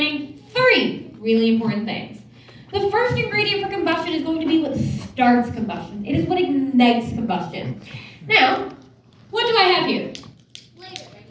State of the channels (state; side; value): identical; both; correlation 1.00